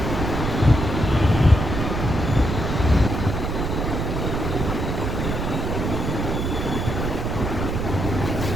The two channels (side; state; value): right; noise; rumble, 2 dB below the sound